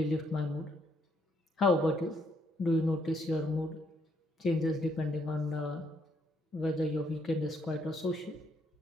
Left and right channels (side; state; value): both; normal; correlation 0.72